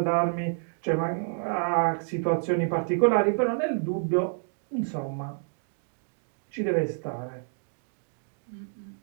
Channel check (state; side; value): silent; left; 59 dB below the other